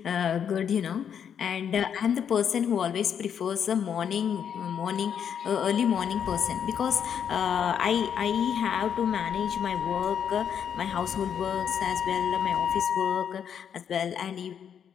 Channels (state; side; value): quieter; right; 8.2 dB